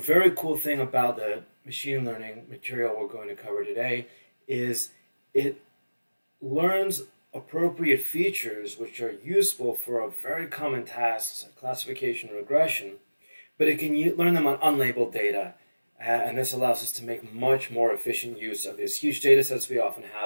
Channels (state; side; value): inverted; both; correlation -0.98